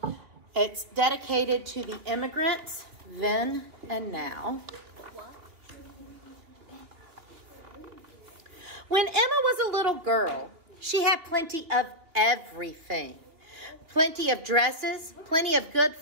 It's dedicated to the immigrants then and now. When Emma was a little girl, she had plenty of everything. Plenty of dresses, plenty of good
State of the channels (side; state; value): left; late; 2.9 ms